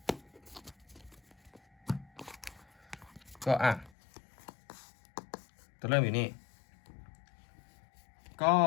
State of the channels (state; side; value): drops out; right; at 3.9 s